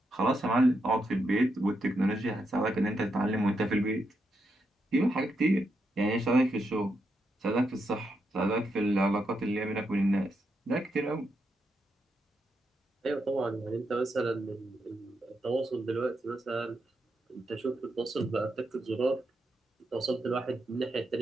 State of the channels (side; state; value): both; normal; correlation 0.83